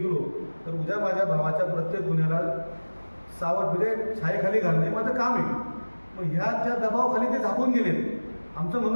तर उद्या माझ्या भावाच्या प्रत्येक गुन्ह्याला सावट म्हणजे छायेखाली घालणे माझं काम आहे. मग ह्या दबावाखाली ते झाकून गेले. आमचं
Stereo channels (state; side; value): inverted; both; correlation -1.00